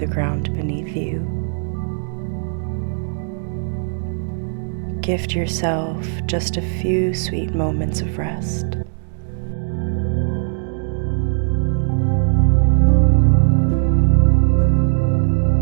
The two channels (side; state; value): left; silent; 62 dB below the other